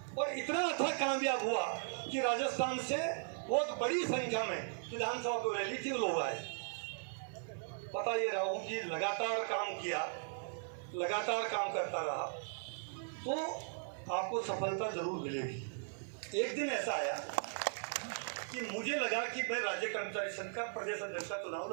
और इतना अच्छा कामयाब हुआ कि राजस्थान से बहुत बड़ी संख्या में विधानसभा को रैली थी, लोग आए। पता ये रहा हूँ कि लगातार काम किया, लगातार काम करता रहा तो आपको सफलता जरूर मिलेगी। एक दिन ऐसा आया कि मुझे लगा कि मैं राज्य कर्मचारी संघ का प्रदेश अध्यक्ष का चुनाव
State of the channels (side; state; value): left; silent; 52 dB below the other